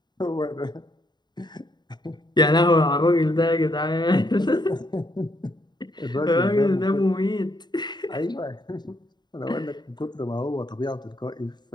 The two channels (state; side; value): late; right; 0.21 ms